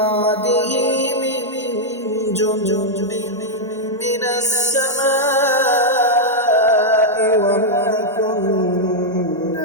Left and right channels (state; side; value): normal; both; correlation -0.04